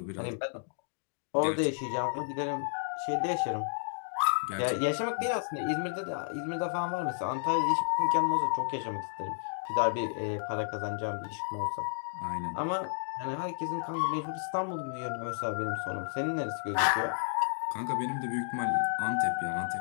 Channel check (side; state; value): right; silent; digital silence